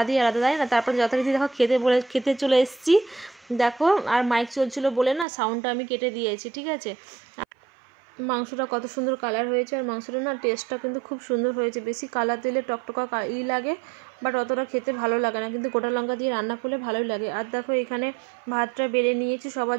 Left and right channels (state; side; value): drops out; left; at 5.2 s